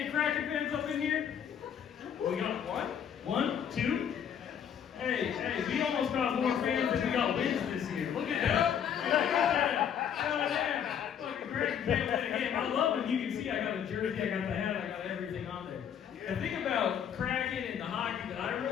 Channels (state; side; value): quieter; right; 8.5 dB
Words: Kraken fans up in here? We got what? 1, 2? Hey, we almost got more fans than we got wins this year. Look at that. Look at that. Fucking Kraken fan win a game. I love it. You can see I got a jersey, I got the hat, I got everything on there. The thing about Kraken and the hockey that I